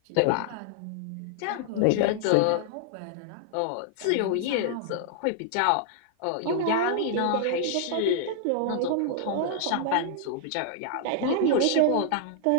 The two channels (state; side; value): different; both; correlation -0.01